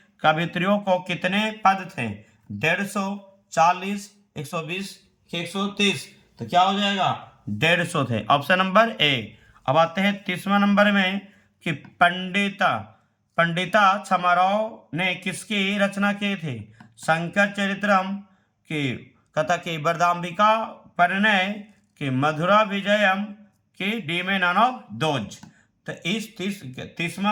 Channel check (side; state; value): both; identical; correlation 1.00